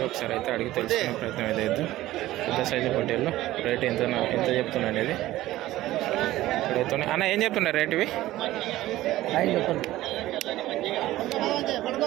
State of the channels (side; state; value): left; quieter; 15.8 dB